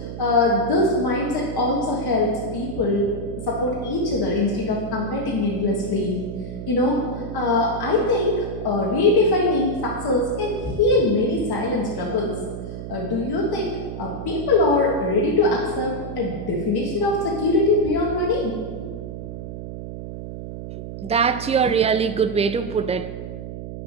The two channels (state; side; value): noise; right; hum, 9 dB below the sound